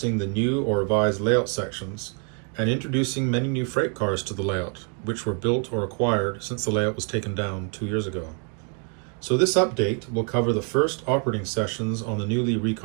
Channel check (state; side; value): quieter; left; 39.3 dB